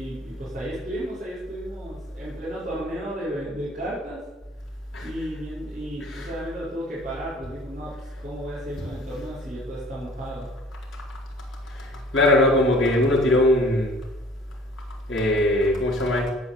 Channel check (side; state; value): both; normal; correlation 0.51